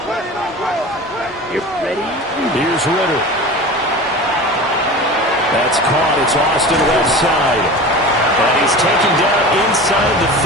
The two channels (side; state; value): both; normal; correlation 0.34